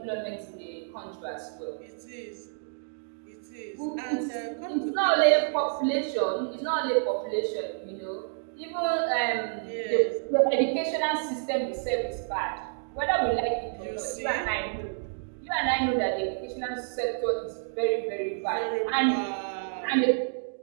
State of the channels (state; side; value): silent; left; digital silence